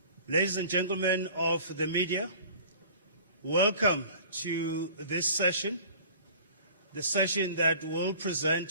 ladies and gentlemen of the media, welcome to this session, the session that will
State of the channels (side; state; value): both; inverted; correlation -0.46